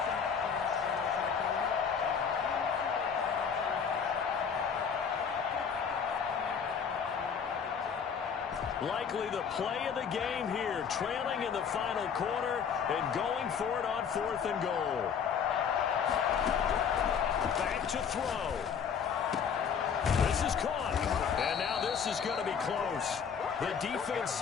Likely the play of the game here, trailing in the final quarter and going for it on 4th and goal. Back to throw. This is caught. And now this is going to be close. The defense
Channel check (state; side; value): quieter; right; 6.9 dB